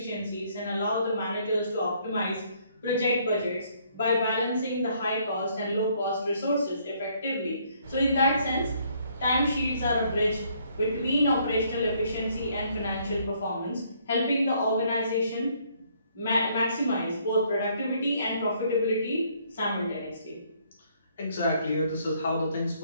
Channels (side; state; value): both; inverted; correlation -0.66